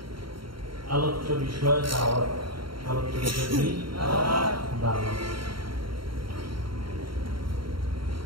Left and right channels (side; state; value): left; late; 0.73 ms